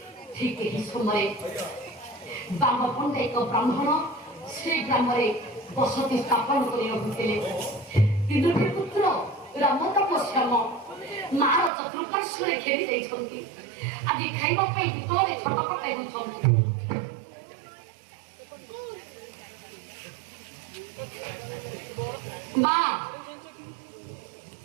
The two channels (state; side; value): drops out; left; at 11.7 s